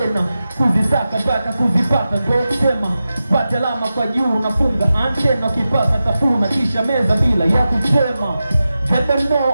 kuzisaka mpaka kuzipata ndo sema pata alama kwa juu nafunga antena ukipata tafuna kisha meza bila ya kusema I don't know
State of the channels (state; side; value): inverted; both; correlation -0.92